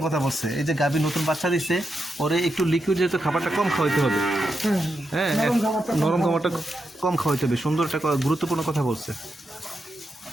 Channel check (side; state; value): both; normal; correlation 0.85